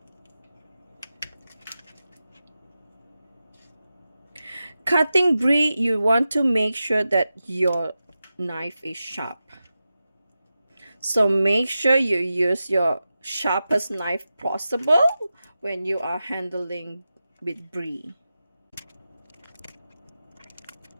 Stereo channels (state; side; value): inverted; both; correlation -0.92